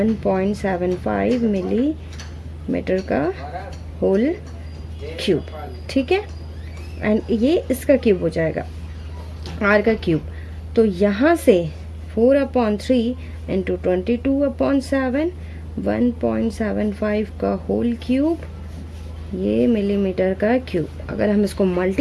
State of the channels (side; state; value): both; identical; correlation 1.00